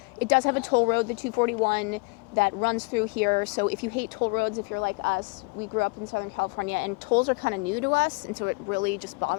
it does have a toll road, the 241, that runs through here. So if you hate toll roads, if you're like us, we grew up in Southern California, and tolls are kind of new to us, and so it really just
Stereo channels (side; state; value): right; quieter; 29.1 dB